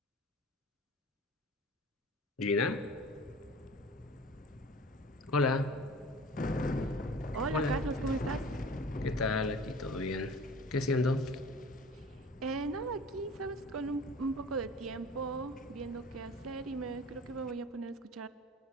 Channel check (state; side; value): normal; both; correlation 0.42